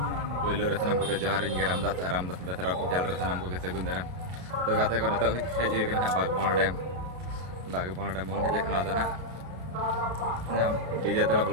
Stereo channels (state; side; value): late; left; 33 ms